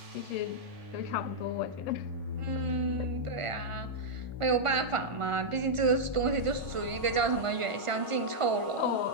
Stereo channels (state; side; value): late; left; 1.5 ms